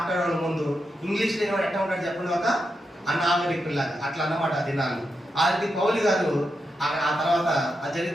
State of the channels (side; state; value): both; normal; correlation 0.86